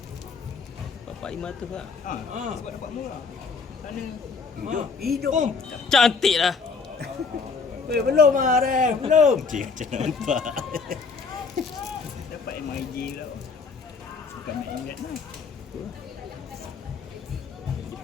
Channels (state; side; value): quieter; right; 4.9 dB